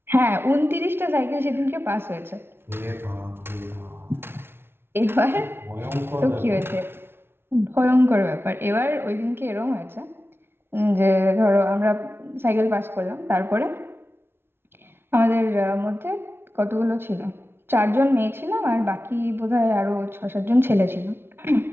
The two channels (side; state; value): left; late; 0.11 ms